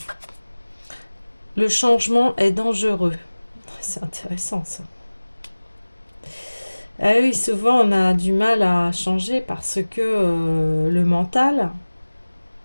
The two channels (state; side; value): inverted; both; correlation -1.00